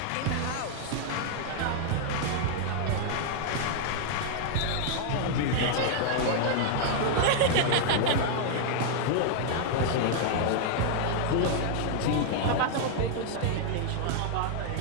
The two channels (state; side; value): different; both; correlation 0.00